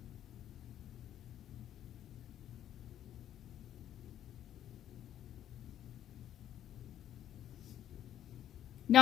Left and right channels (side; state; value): right; quieter; 11.2 dB